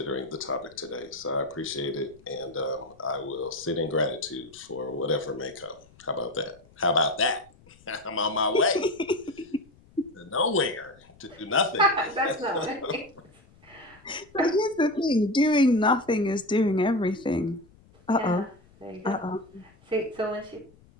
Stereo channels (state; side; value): noise; left; rumble, 27 dB below the sound